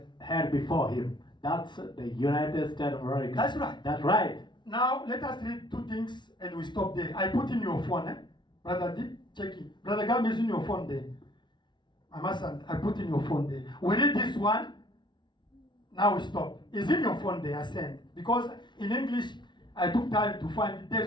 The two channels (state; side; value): late; right; 0.22 ms